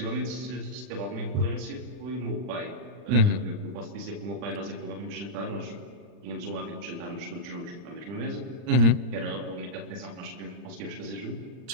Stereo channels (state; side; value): late; left; 40 ms